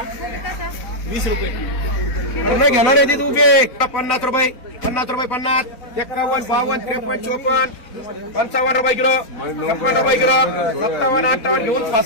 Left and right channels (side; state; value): right; late; 4.1 ms